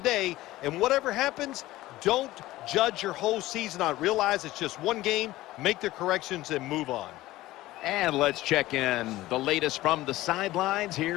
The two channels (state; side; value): quieter; right; 17.0 dB